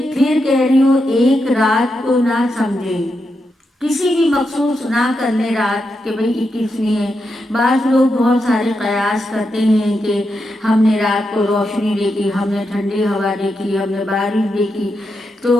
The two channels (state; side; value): normal; both; correlation 0.85